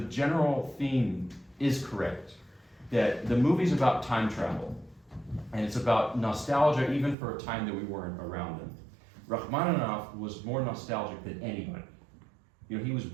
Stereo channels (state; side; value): drops out; left; at 7.2 s